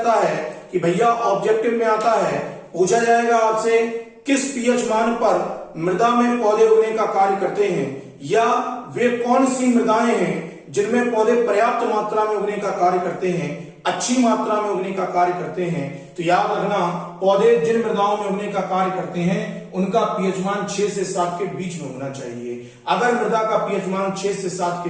है कि भैया ऑब्जेक्टिव में आता है, पूछा जाएगा आपसे किस पीएच मान पर मृदा में पौधे उगने का कार्य करते हैं, या वे कौन सी मृदाएं हैं जिनमें पौधे पर्याप्त मात्रा में उगने का कार्य करते हैं, अच्छी मात्रा में उगने का कार्य करते हैं। तो याद रखना, पौधे जिन मृदाओं में उगने का कार्य करते हैं उनका पीएच मान 6 से 7 के बीच में होना चाहिए। अगर मृदा का पीएच मान 6 से 7 के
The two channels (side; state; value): both; identical; correlation 1.00